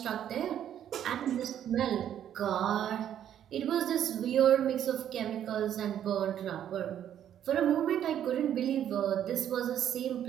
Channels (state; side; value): quieter; left; 10.2 dB